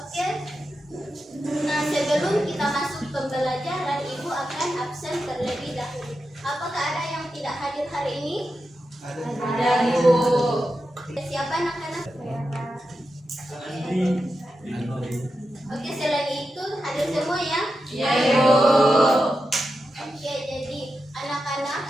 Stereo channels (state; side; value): normal; both; correlation 0.89